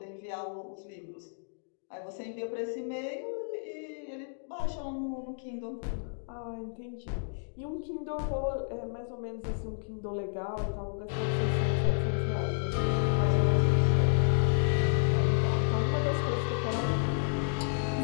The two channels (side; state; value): right; silent; digital silence